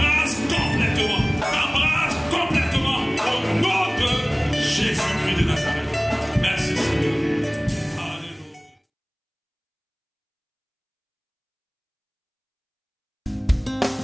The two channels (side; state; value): both; identical; correlation 1.00